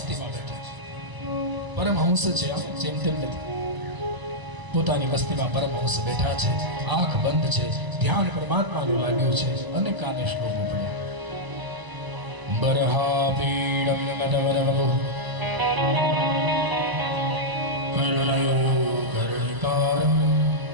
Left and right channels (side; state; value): left; late; 1.0 ms